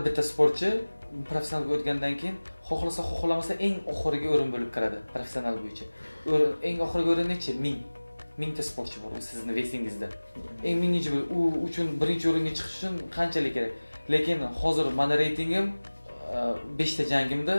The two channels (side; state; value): both; inverted; correlation -1.00